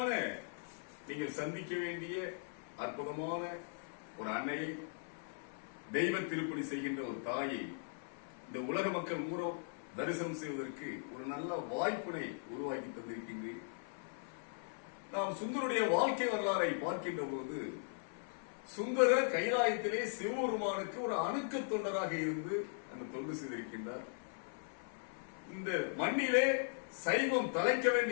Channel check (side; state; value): right; silent; 52 dB below the other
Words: நீங்கள் சந்திக்க வேண்டிய அற்புதமான ஒரு அன்னையை, தெய்வ திருப்பணி செய்கின்ற ஒரு தாயை இந்த உலக மக்கள் மூலம் தரிசனம் செய்வதற்கு ஒரு நல்ல வாய்ப்பினை உருவாக்கி தந்திருக்கின்றேன். நாம் சுந்தருடைய வாழ்க்கை வரலாறை பார்க்கின்ற போது, சுந்தரர் கைலாயத்திலே சிவபெருமானுக்கு ஒரு அணுக்க தொண்டராக இருந்து அந்த தொண்டு செய்திருக்கின்றார். இந்த மண்ணிலே சைவம் தலைக்க